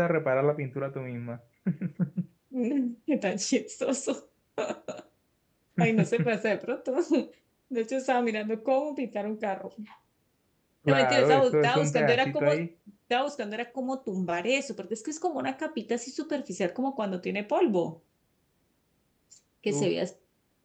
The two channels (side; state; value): both; identical; correlation 1.00